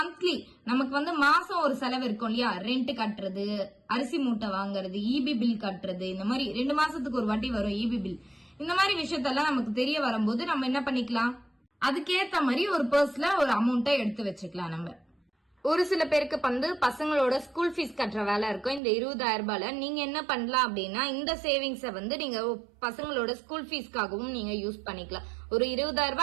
நமக்கு வந்து மாசம் ஒரு செலவு இருக்கும் இல்லையா, ரெண்ட் கட்டுறது, அரிசி மூட்டை வாங்குறது, இபி பில் கட்டுறது, இந்த மாதிரி 2 மாசத்துக்கு ஒரு வாட்டி வரும் இபி பில். இந்த மாதிரி விஷயத்தெல்லாம் நமக்கு தெரிய வரும்போது நம்ம என்ன பண்ணிக்கலாம், அதுக்கேத்த மாதிரி ஒரு பர்ஸ்ல ஒரு அமௌண்ட்டை எடுத்து வச்சுக்கலாம். நம்ம ஒரு சில பேருக்கு வந்து பசங்களோட ஸ்கூல் ஃபீஸ் கட்டுற வேலை இருக்கும். இந்த 20,000 ரூபாயில நீங்க என்ன பண்ணலாம் அப்படின்னா, இந்த சேவிங்ஸை வந்து நீங்க பசங்களோட ஸ்கூல் ஃபீஸ்க்காகவும் நீங்க யூஸ் பண்ணிக்கலாம். ஒரு 20,000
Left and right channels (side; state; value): left; drops out; at 18.8 s